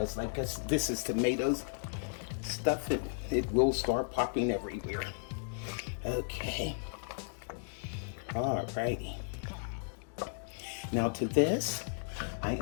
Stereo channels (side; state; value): right; silent; digital silence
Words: like this is tomatoes stuff, it will start popping everywhere. Okay. Alrighty. Now to this, I